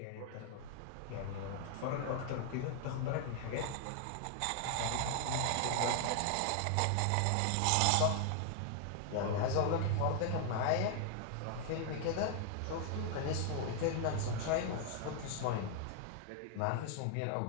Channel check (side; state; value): both; different; correlation 0.00